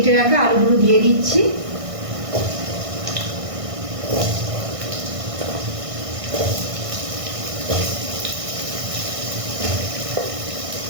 রাখা আলুগুলো দিয়ে দিচ্ছি।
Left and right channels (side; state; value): left; late; 1.6 ms